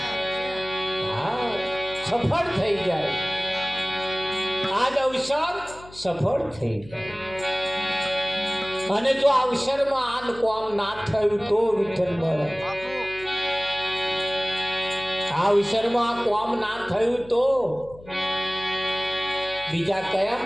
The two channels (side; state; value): left; noise; hum, 20 dB below the sound